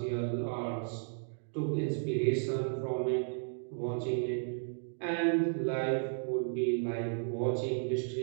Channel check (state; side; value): silent; left; digital silence